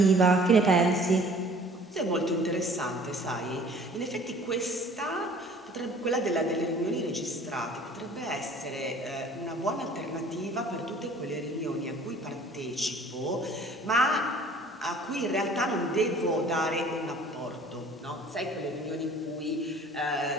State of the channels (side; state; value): both; normal; correlation 0.51